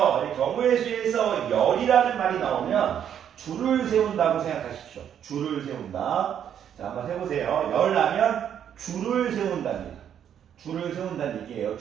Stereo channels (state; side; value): quieter; left; 9.2 dB